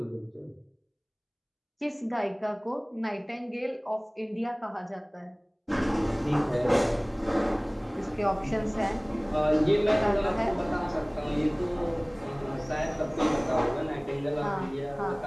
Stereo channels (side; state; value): both; identical; correlation 1.00